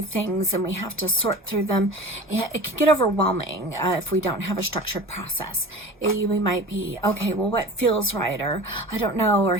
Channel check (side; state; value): both; normal; correlation 0.37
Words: things and we have to sort through them, it can get overwhelming if we don't have a structured process. We might be, okay, well, what feels right? Or I don't know, or